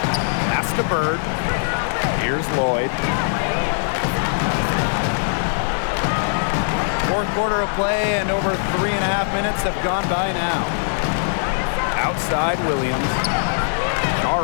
Pass to Bird. Here's Lloyd. Fourth quarter of play, and over 3.5 minutes have gone by now. Outside Williams.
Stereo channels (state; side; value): silent; right; digital silence